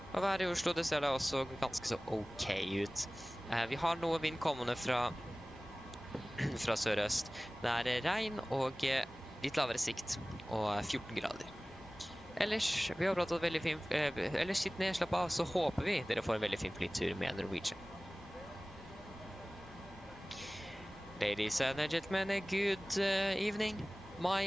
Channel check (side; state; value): both; normal; correlation 0.98